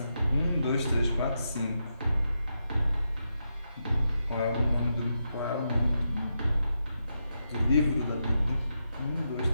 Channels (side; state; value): both; inverted; correlation -0.85